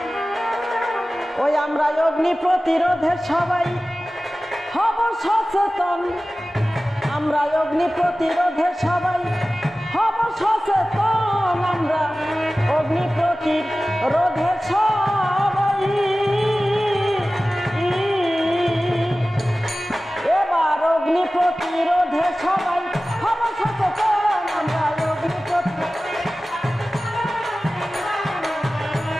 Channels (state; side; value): normal; both; correlation 0.96